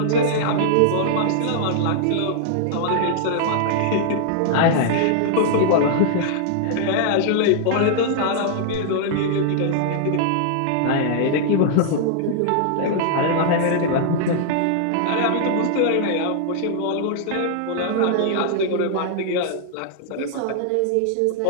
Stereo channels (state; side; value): different; both; correlation -0.01